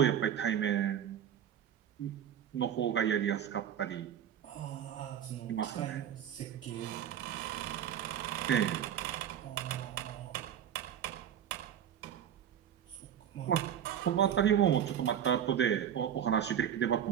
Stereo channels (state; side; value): quieter; left; 9.6 dB